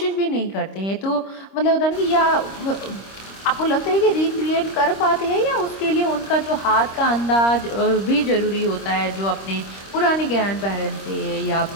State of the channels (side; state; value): right; late; 26 ms